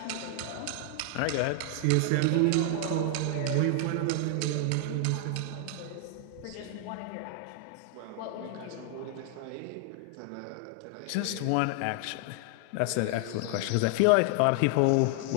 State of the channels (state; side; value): different; both; correlation 0.00